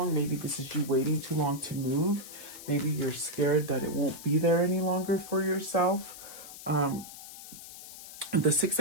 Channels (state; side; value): noise; left; hiss, 14 dB below the sound